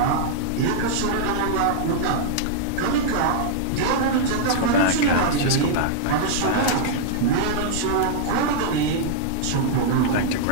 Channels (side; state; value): both; different; correlation -0.01